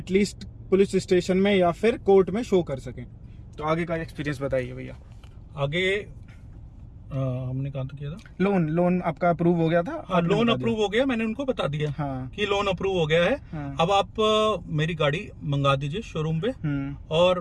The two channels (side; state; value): both; identical; correlation 1.00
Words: पुलिस स्टेशन में या फिर कोर्ट में शो कर सकें। तो आगे का एक्सपीरियंस बताइए भैया। आगे हमने कहा किया था, लोन आपका अप्रूव हो गया था? हाँ, लोन अप्रूव हो गया, मैंने उनको बता दिया कि लोन अप्रूव हो गया है। अब आप मेरी गाड़ी मंगा दीजिए शोरूम पे, और